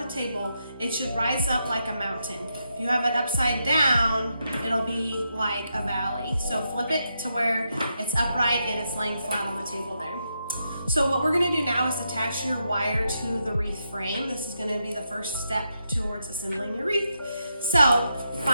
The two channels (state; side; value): inverted; both; correlation -0.83